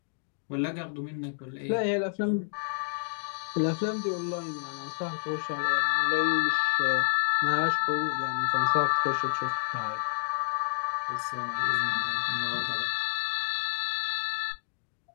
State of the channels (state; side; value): silent; right; digital silence